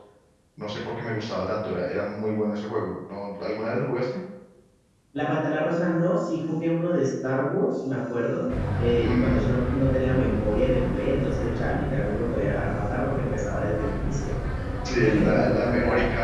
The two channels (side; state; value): both; identical; correlation 1.00